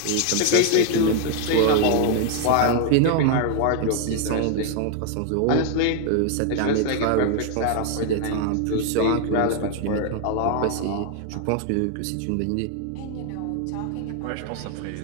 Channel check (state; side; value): different; both; correlation 0.00